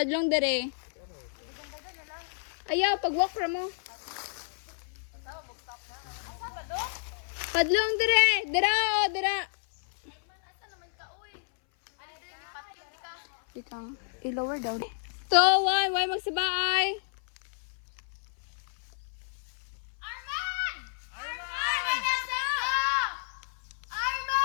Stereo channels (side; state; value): right; silent; 58 dB below the other